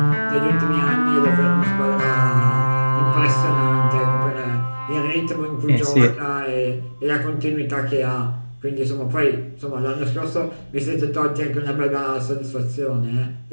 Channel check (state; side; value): inverted; both; correlation -1.00